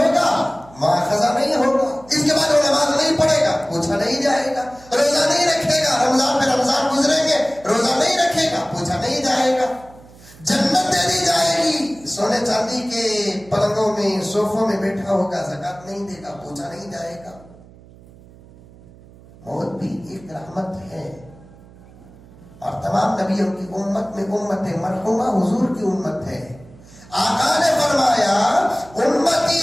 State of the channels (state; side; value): noise; right; hum, 23 dB below the sound